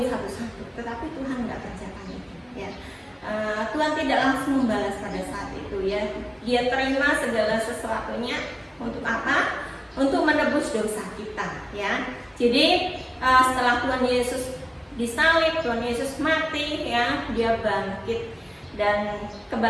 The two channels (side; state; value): both; identical; correlation 1.00